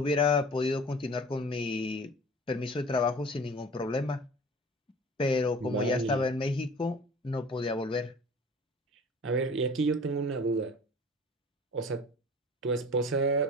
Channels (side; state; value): both; normal; correlation 0.43